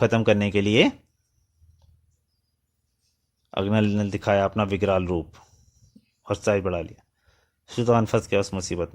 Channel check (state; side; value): identical; both; correlation 1.00